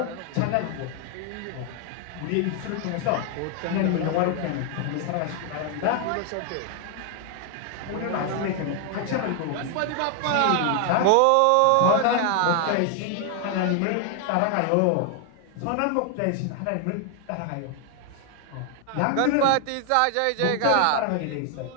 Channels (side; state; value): both; different; correlation 0.00